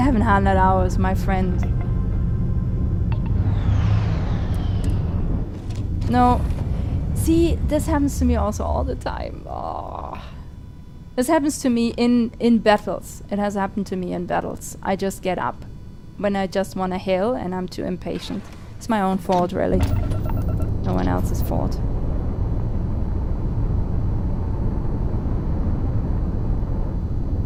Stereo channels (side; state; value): both; identical; correlation 1.00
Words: hours, my friend. No. See, this happens to me also all the time. Oh. This happens to me in battles. It has happened to me in battles. I just get up when I just want to heal and I'm too impatient. It's my own fault, really. No one else's fault.